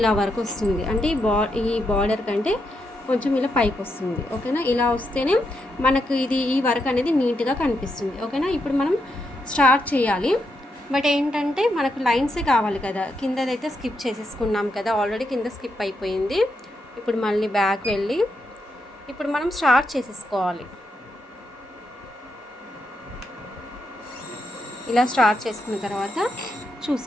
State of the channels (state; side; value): normal; both; correlation 0.82